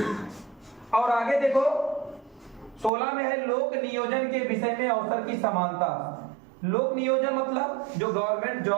और आगे देखो 16 में है लोक नियोजन के विषय में अवसर की समानता। लोक नियोजन मतलब जो गवर्नमेंट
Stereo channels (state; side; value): drops out; left; at 2.9 s